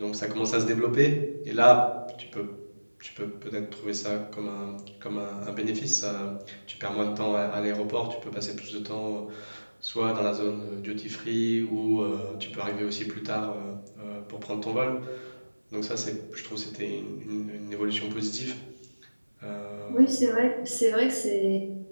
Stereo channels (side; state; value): both; inverted; correlation -1.00